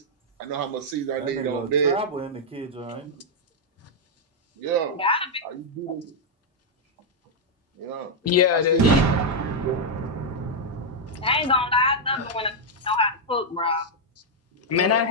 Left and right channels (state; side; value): normal; both; correlation -0.03